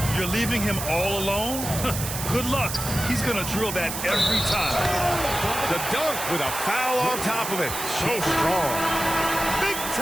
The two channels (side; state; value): right; noise; hiss, 5 dB below the sound